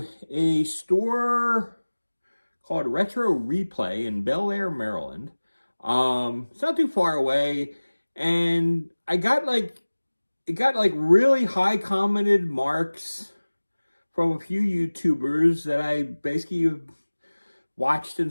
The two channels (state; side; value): inverted; both; correlation -1.00